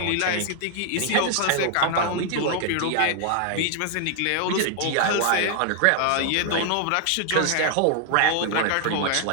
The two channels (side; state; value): both; different; correlation 0.00